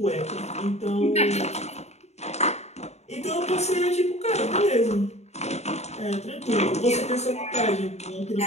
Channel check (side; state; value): right; late; 0.32 ms